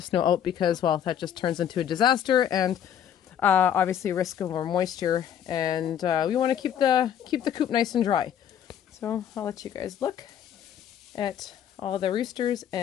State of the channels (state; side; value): quieter; right; 9.5 dB